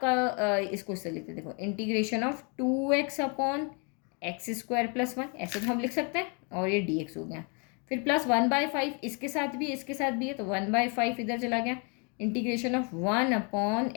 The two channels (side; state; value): right; quieter; 35.2 dB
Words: इसको इससे लिखते हैं, देखो इंटीग्रेशन ऑफ 2x/x² + 1, ऐसे तो हम लिख सकते हैं, और ये dx हो गया। फिर प्लस 1/5 इसके साथ भी है, तो 1/5 इधर चला गया, इंटीग्रेशन ऑफ